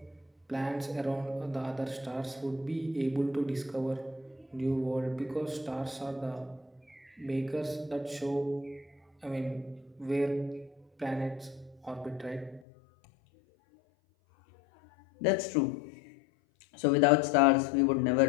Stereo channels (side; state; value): right; drops out; at 12.6 s